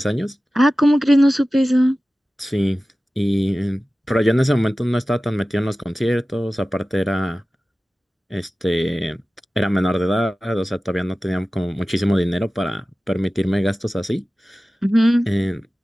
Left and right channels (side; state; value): both; normal; correlation 0.96